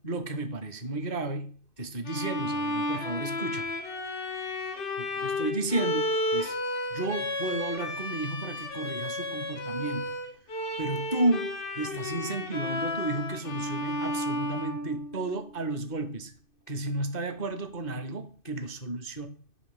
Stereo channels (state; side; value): late; right; 2.6 ms